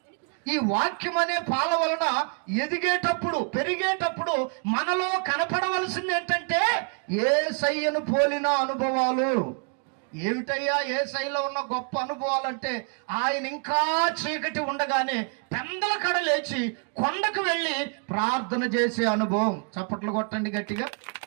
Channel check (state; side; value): quieter; left; 39.7 dB